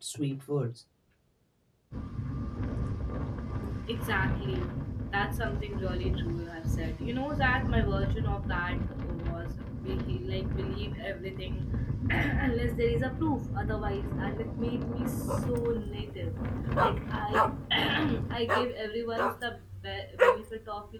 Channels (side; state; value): both; identical; correlation 1.00